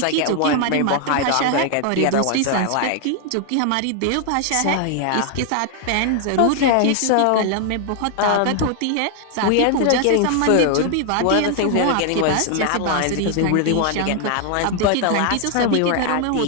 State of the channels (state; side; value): different; both; correlation 0.00